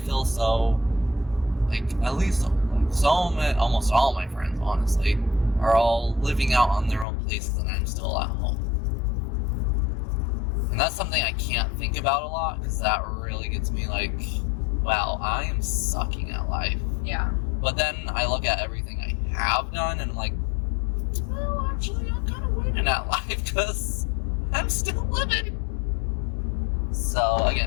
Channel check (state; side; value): drops out; right; at 7.1 s